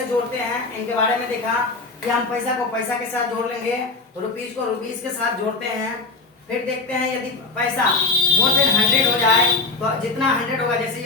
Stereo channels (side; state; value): right; quieter; 3.8 dB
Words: जोड़ते हैं इनके बारे में देखा कि हम पैसा को पैसा के साथ जोड़ लेंगे, रुपीज को रुपीज के साथ जोड़ते हैं। फिर देखते हैं यदि पैसा मोर देन 100 हो जाए तो जितना 100 होगा, जैसे